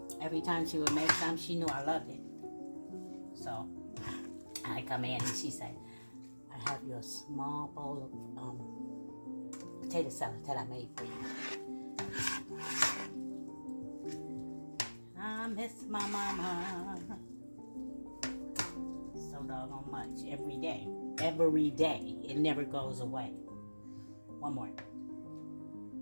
every time she would make some, she knew I loved it. So I come in and she said, I have your small bowl of potato salad that I made for you. I miss my mama so doggone much every day. Every day. It never goes away. One more.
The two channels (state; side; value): inverted; both; correlation -1.00